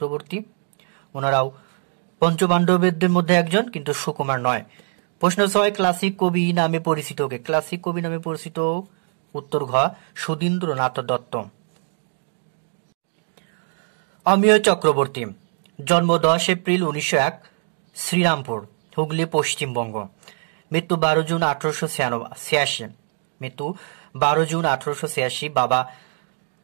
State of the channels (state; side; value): silent; left; 56 dB below the other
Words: ওনারাও পঞ্চপাণ্ডবদের মধ্যে একজন, কিন্তু সুকুমার নয়। প্রশ্ন 6, ক্লাসিক কবি নামে পরিচিত কে? ক্লাসিক কবি নামে পরিচিত উত্তর ঘ, সুধীন্দ্রনাথ দত্ত। অমিয় চক্রবর্তী, জন্ম 10 এপ্রিল 1901, শ্রীরামপুর, হুগলি, পশ্চিমবঙ্গ, মৃত্যু 12 জুন 1886। মৃত্যু 12 জুন 1886। বাবা